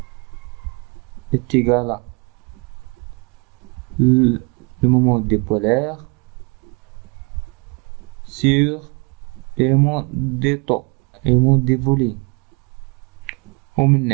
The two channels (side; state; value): left; quieter; 32.1 dB